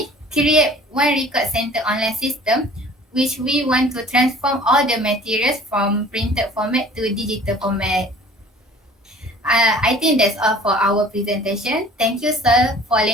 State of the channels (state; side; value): normal; both; correlation 0.49